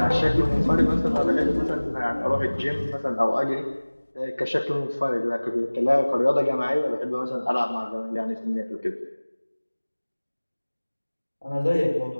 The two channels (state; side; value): inverted; both; correlation -1.00